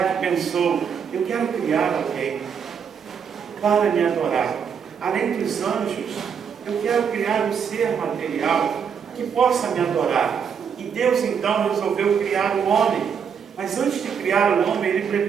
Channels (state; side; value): quieter; left; 7.1 dB